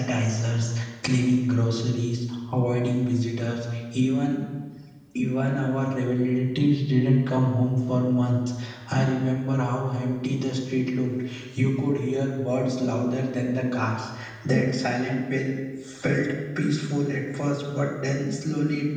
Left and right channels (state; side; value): identical; both; correlation 1.00